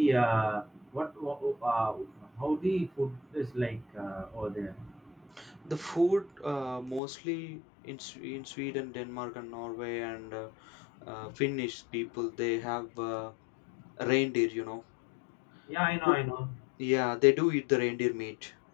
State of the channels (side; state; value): right; drops out; at 7.0 s